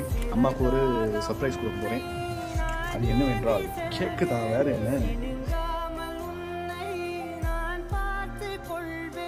அம்மாவுக்கு ஒரு சர்ப்ரைஸ் கொடுக்க போகிறேன். அது என்னவென்றால் கேக்கு தான், வேறு என்ன.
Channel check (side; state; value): both; identical; correlation 1.00